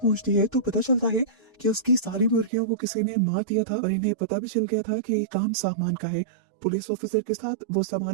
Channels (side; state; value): left; drops out; at 2.5 s